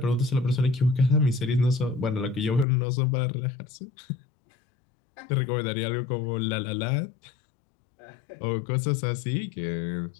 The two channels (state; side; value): drops out; right; at 2.7 s